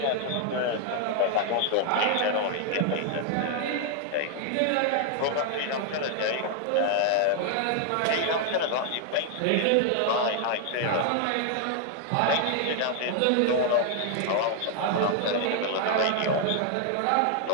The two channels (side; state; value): both; different; correlation 0.00